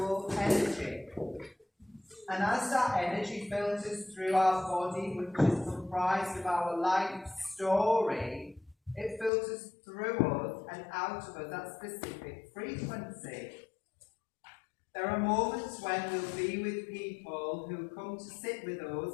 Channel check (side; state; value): right; drops out; at 9.3 s